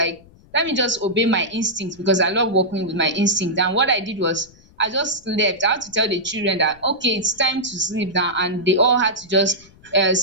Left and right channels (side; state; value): left; noise; rumble, 26 dB below the sound